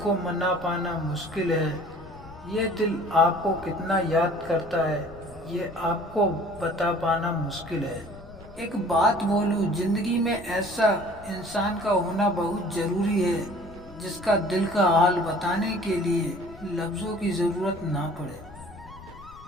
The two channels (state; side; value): noise; left; rumble, 19 dB below the sound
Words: मना पाना मुश्किल है। ये दिल आपको कितना याद करता है, ये आपको बता पाना मुश्किल है। एक बात बोलूं, जिंदगी में ऐसा इंसान का होना बहुत जरूरी है जिसका दिल का हाल बताने के लिए लफ्जों की जरूरत ना पड़े।